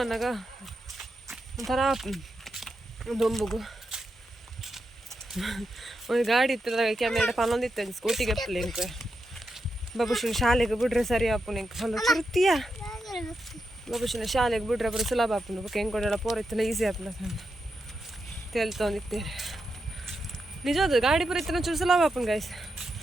ಬಂದಾಗ ಒಂಥರ ದೊಂಬುಗು ಒಂದು ಗಾಡಿ ಇತ್ತಲ್ಲ ಕ್ಯಾಮೆರಾ ಪನ್ನೊಂದಿತ್ತು ಸ್ಕೂಟಿಗೆ ಅಪ್ಪಲೆ ಇಂಕ ಬಾಬುಶಿನ ಶಾಲೆಗೆ ಬಿಡ್ರೆ ಸರಿ ಆಪುನ ಇಂಕ ಹೊಲ ಚುರುತಿಯ ಬಾಬುಶಿನ ಶಾಲೆಗೆ ಬಿಡ್ರೆ ಬರೋ ಸುಲಭ ಆಪುನ ಬೊಕ್ಕ ಹೆಂಗೆ ಕೊಡೋಲ್ಲ ಪೋರ ಇತ್ತಲ್ಲ ಈಸಿ ಆಪುನ ತೇಲ್ತೊಂದಿತ್ತೇನೆ ನಿಜವಾದ ಗಾಡಿ ಪುರ ಇತ್ತನ ಚೂರು ಸುಲಭ ಆಪುನ ಗಾಯ್ಸ್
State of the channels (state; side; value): normal; both; correlation 0.86